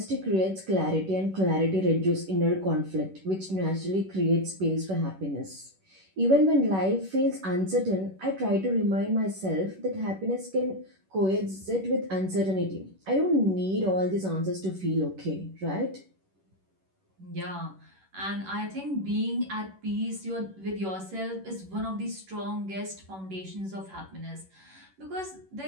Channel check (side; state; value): left; late; 11 ms